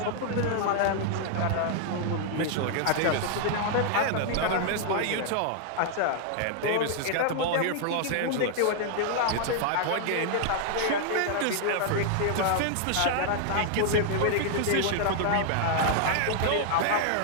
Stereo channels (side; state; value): both; different; correlation 0.00